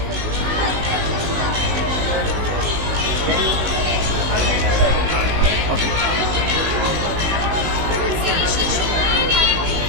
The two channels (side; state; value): left; late; 19 ms